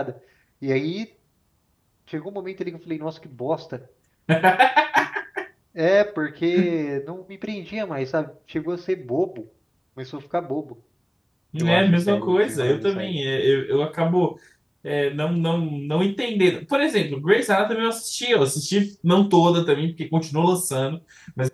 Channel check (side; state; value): both; identical; correlation 1.00